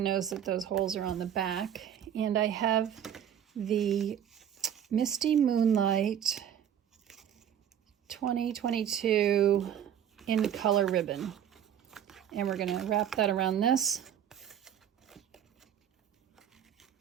knows that those holes are on the back. And I have the Misty Moonlight 2022 in color ribbon. And we're going to wrap that around this.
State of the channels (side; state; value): left; quieter; 9.5 dB